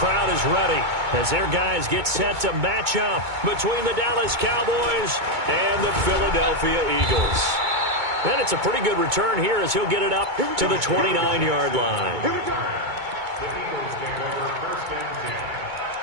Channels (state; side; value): late; left; 2.2 ms